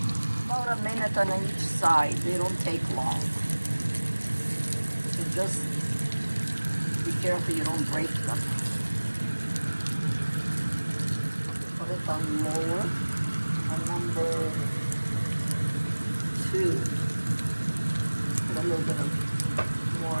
About a minute on each side. They don't take long. So just be careful you don't break them. Put it on lower, on number 2. Put a little bit of more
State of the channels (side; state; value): both; inverted; correlation -1.00